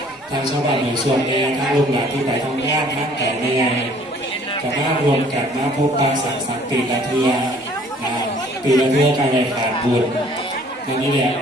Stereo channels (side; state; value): both; normal; correlation 0.56